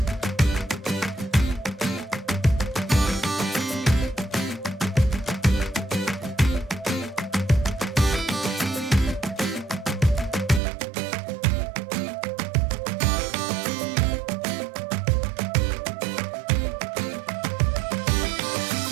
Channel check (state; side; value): drops out; left; at 10.6 s